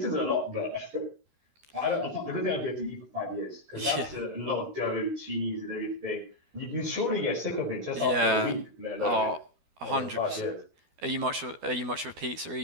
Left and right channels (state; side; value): late; left; 12 ms